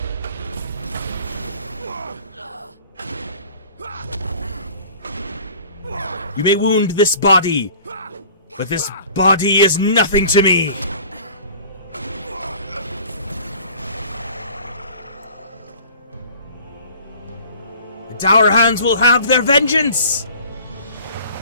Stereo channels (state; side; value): inverted; both; correlation -0.47